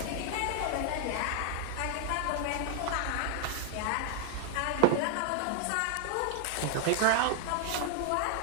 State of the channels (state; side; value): different; both; correlation 0.00